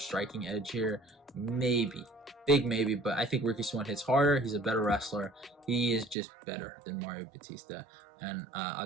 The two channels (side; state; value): left; drops out; at 6.2 s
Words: edge here? Maybe. Big maybe, but I think Ricky Simón hits harder. He's a better wrestler. He is just better than Mario Bautista. And